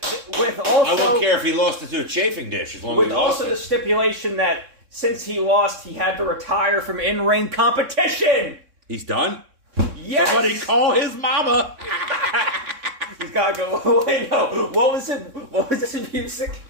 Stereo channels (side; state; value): left; late; 3.6 ms